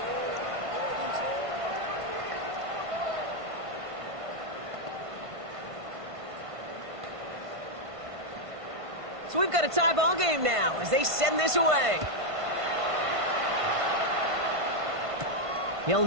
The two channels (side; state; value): left; late; 1.5 ms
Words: So we've got a tie ball game now as they send this away. Hill